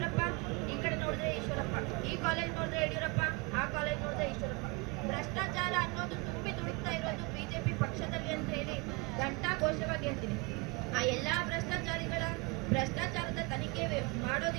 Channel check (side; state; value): left; quieter; 26.6 dB